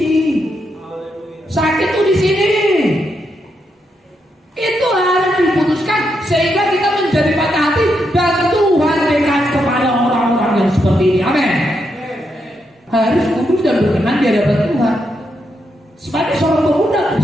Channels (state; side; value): normal; both; correlation 0.81